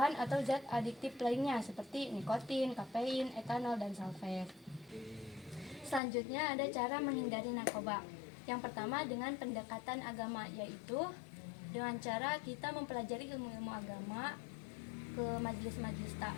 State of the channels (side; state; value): right; drops out; at 6.0 s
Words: atau zat adiktif lainnya seperti nikotin, kafein, etanol, dan sulfat. Selanjutnya ada cara menghindari narkoba. Yang pertama dengan pendekatan agama, yaitu dengan cara kita mempelajari ilmu-ilmu agama ke majelis-majelis